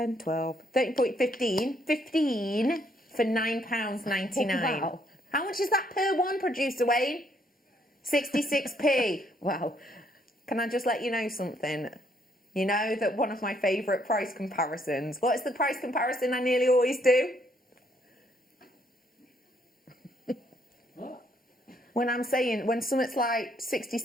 12, 13, 15. 15 for £9.99. Wow. How much is that per one, producer Wayne? 66p. Wow. Can I just let you know something? You know that one of my favourite price comparisons. What is the price comparison I nearly always do? When I'm saying, when something's like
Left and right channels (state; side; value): normal; both; correlation 0.69